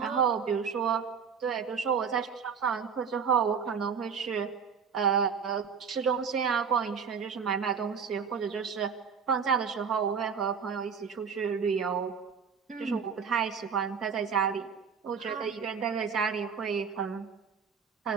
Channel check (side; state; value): left; quieter; 6.5 dB